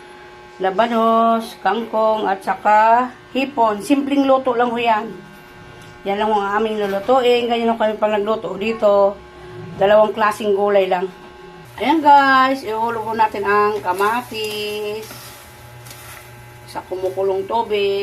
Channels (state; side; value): identical; both; correlation 1.00